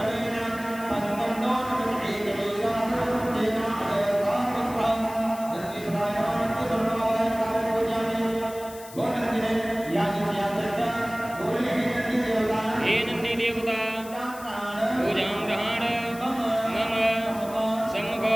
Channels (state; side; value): noise; left; hiss, 17 dB below the sound